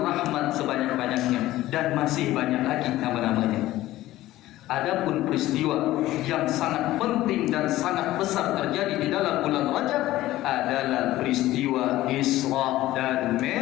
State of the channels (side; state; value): right; quieter; 15.8 dB